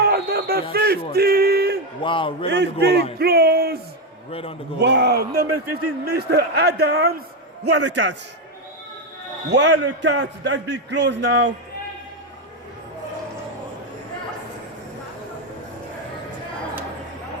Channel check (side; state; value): both; normal; correlation 0.08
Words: number 15. Sure. Wow, right on the goal line. It's been close. Right on the goal line. Wow, number 15, Mr. Adams. What a catch. What a catch. That's been close now.